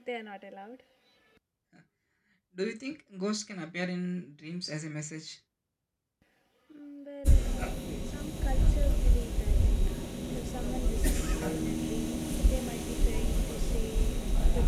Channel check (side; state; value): both; identical; correlation 1.00